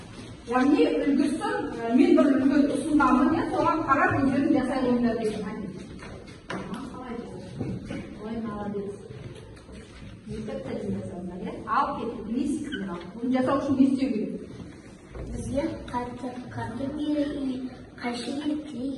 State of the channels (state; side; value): identical; both; correlation 1.00